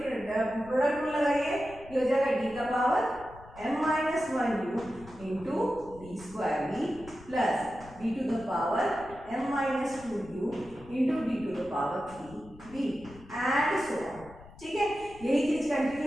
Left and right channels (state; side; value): noise; left; rumble, 20 dB below the sound